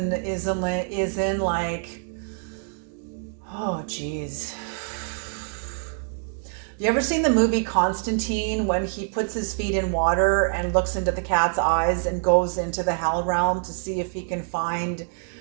like, oh geez. You ever seen the movie Constantine, when he puts his feet in water and looks into the cat's eyes and goes into the hell realm to see if he can find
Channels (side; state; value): left; silent; digital silence